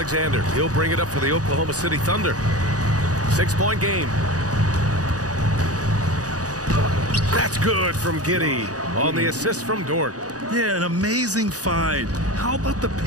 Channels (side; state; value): left; late; 0.67 ms